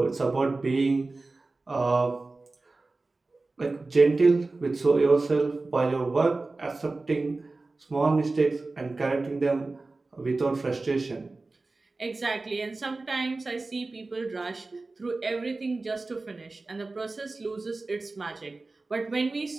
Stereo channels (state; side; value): quieter; left; 3.4 dB